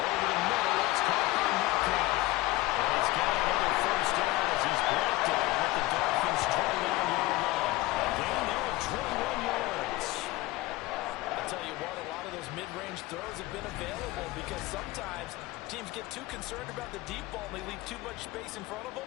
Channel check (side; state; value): right; quieter; 19.2 dB